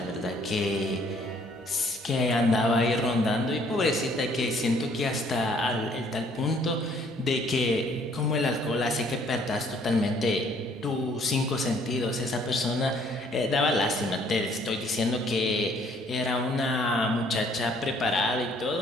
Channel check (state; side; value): normal; both; correlation 0.62